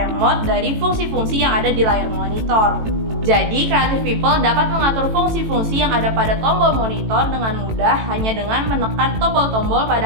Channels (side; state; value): left; late; 18 ms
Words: dari fungsi-fungsi yang ada di layar monitor. Jadi Creative People dapat mengatur fungsi-fungsi yang ada pada tombol monitor dengan mudah hanya dengan menekan tombol-tombol